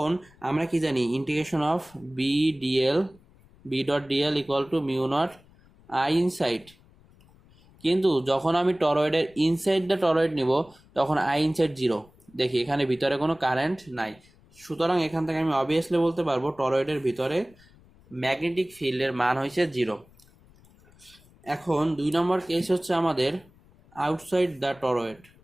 আমরা কি জানি, integration of B dot dl equal to mu naught I inside, কিন্তু যখন আমি টরয়েডের ইনসাইড দ্য টরয়েড নিব তখন আই ইনসাইড 0, দেখি এখানে ভিতরে কোনো কারেন্ট নাই, সুতরাং এখান থেকে আমি অবভিয়াসলি বলতে পারবো টরয়েডের ভিতরে ম্যাগনেটিক ফিল্ডের মান হয়েছে 0। এখন 2 নম্বর কেস হচ্ছে আমাদের আউটসাইড দ্য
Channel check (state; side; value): noise; left; rumble, 28 dB below the sound